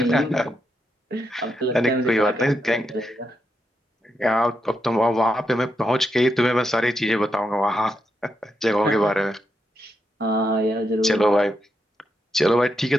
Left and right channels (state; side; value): normal; both; correlation 0.83